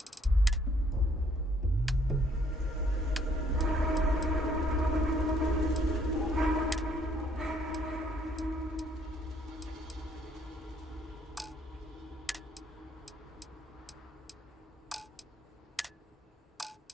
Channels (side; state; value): both; normal; correlation 0.66